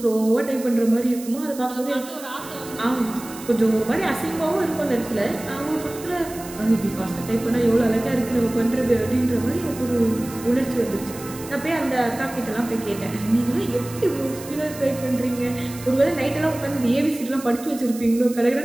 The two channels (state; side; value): noise; right; hiss, 15 dB below the sound